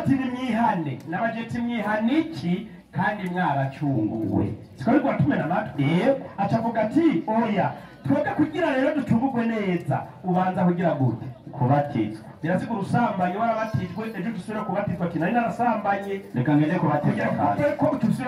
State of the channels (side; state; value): both; identical; correlation 1.00